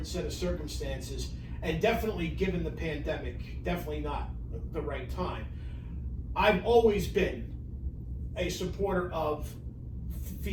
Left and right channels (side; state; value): both; identical; correlation 1.00